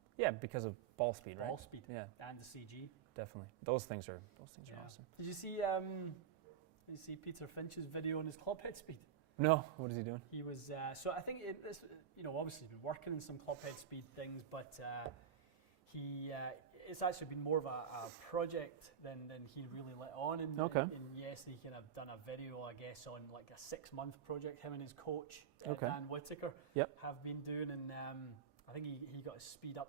Yeah, because of ball speed. Ball speed. Yeah, and the CG. Definitely, those things are awesome. Did you see Peter Finch's video on his club head speed? No. What is he doing? He was so I think obviously he's been working on some club head speed things, but it's actually been more of a project than he really let on. And yes, he kind of done a video, I guess, on like a 6-month project. Him and his coach, Dan Whitaker, have been doing. And I think he got his speed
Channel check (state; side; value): quieter; left; 8.2 dB